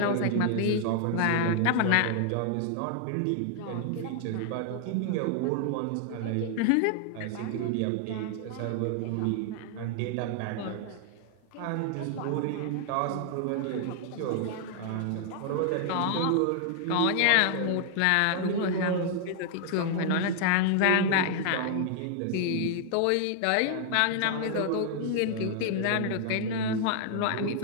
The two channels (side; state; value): both; different; correlation 0.00